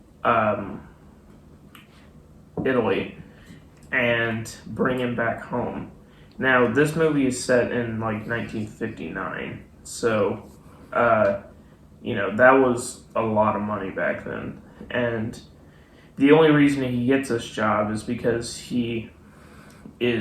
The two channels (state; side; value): identical; both; correlation 1.00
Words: Italy and bring him back home. Now, this movie is set in like 1959, so that was a lot of money back then. And the only reason he gets this job is because he